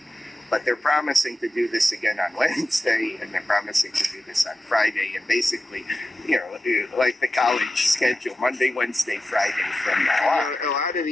But they're promising to do this again on Wednesday, and they're promising to do this on Friday, and basically, like the college schedule, Monday, Wednesday, Friday from now on. A lot of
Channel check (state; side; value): normal; both; correlation 0.92